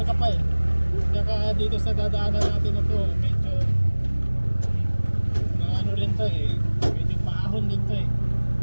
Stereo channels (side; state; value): both; inverted; correlation -1.00